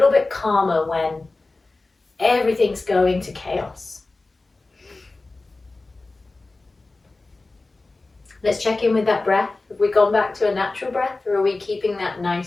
bit calmer when everything's going to chaos. Let's check in with that breath. Have we gone back to a natural breath, or are we keeping that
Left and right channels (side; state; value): right; quieter; 3.3 dB